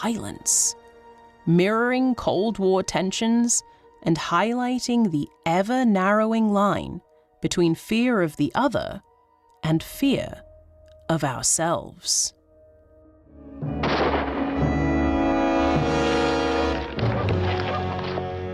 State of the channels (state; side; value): identical; both; correlation 1.00